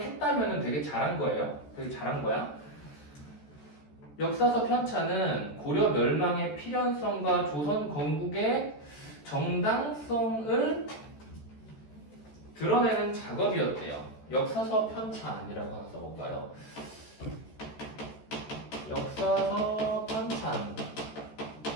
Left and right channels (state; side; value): late; right; 14 ms